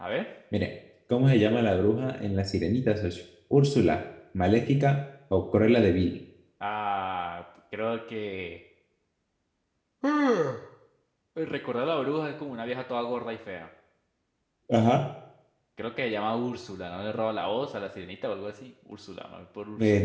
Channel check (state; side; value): identical; both; correlation 1.00